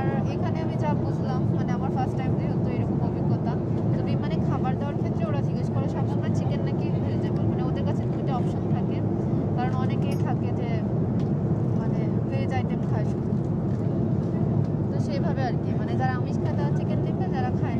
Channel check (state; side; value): identical; both; correlation 1.00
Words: এখানে আমি যা বুঝলাম, মানে আমার ফার্স্ট টাইম যেহেতু এরকম অভিজ্ঞতা, তো বিমানে খাবার দেওয়ার ক্ষেত্রে ওরা জিজ্ঞেস করে সবসময় চিকেন নাকি ভেজিটেবল, মানে ওদের কাছে 2টা অপশন থাকে। কারণ অনেকেই থাকে যে মানে ভেজ আইটেম খায় শুধু, তো সেইভাবে আর কি, মানে যারা আমিষ খায় তারা চিকেন নেবে, যারা খায়